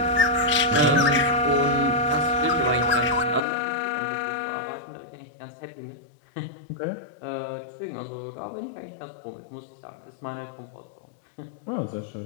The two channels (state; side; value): drops out; right; at 3.4 s